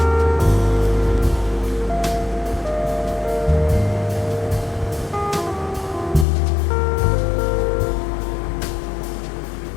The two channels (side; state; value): right; drops out; at 6.2 s